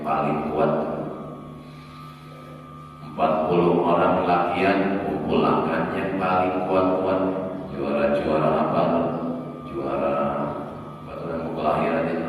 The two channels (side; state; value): both; identical; correlation 1.00